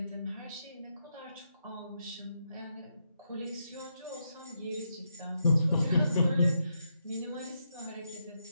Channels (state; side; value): inverted; both; correlation -0.82